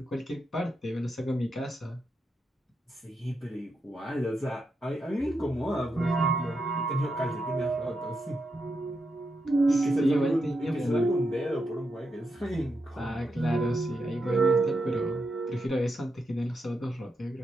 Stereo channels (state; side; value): normal; both; correlation 0.84